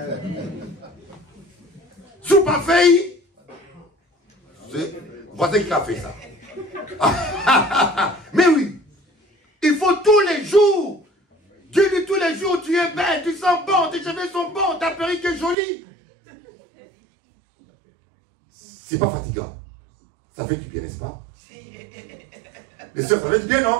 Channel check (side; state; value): left; drops out; at 15.6 s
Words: Sous pas fait. Voici qui a fait ça. Mais oui. Il faut tous les jours. Dieu dit tous les jours, tu es belle, tu sens bon, tes cheveux sont bons, ta perruque est jolie. C'est pas fatigant. Ça fait du bien, n'est-ce pas? Les soeurs, ça fait du bien,